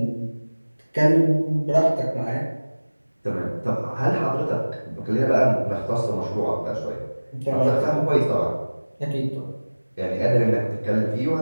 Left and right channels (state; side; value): inverted; both; correlation -1.00